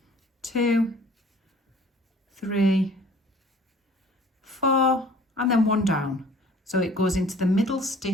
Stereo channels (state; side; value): normal; both; correlation 0.51